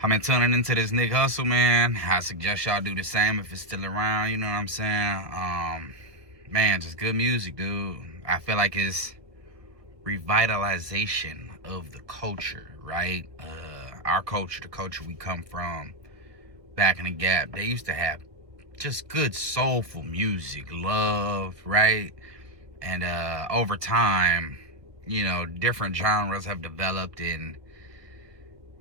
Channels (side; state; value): left; late; 1.9 ms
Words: I've been tuning into this Nick Hustle, man. I suggest y'all do the same if it's still around, you know what I'm saying? Man, just good music, dude. I feel like it's revitalization of the culture, right? Our culture, the culture we come from back in the Gap, they used to have just good soulful music, love, right? And over time, you know, different genres have developed, and